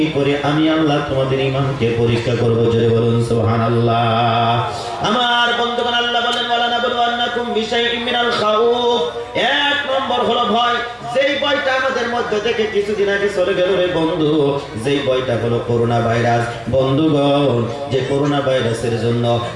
করে আমি আল্লাহ তোমাদের ঈমানকে পরীক্ষা করব। জোরে বলুন সুবহানাল্লাহ। আমার বন্ধুগণ, আল্লাহ বলেন, ওয়ালানাবলুওয়ান্নাকুম বিশাইইন মিনাল খাউফ। 1 নম্বর হলো ভয়, যেই ভয়টা আমাদের মধ্যে থেকে কিছুদিন আগে চলে গেল রে বন্ধু, যেই ভয়টা হলো করোনা ভাইরাস। বন্ধুগণ, যে করোনা ভাইরাসের জন্য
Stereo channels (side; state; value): both; identical; correlation 1.00